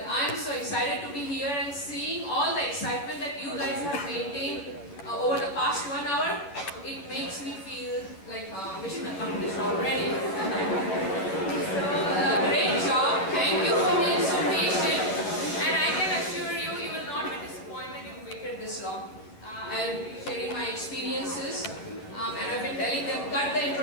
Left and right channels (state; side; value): late; right; 10 ms